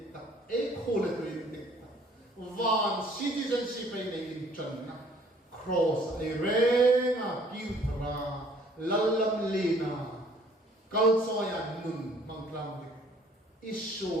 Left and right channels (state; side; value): normal; both; correlation 0.57